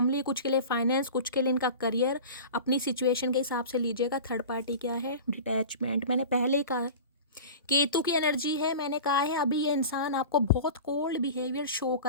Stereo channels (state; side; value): inverted; both; correlation -0.35